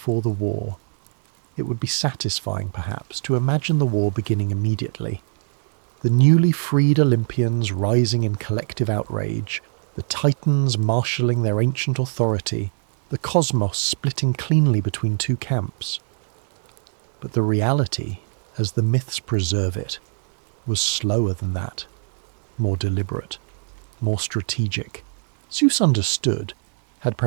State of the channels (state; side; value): silent; left; digital silence